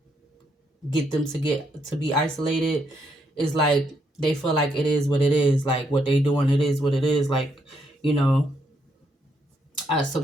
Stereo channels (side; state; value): both; normal; correlation 0.75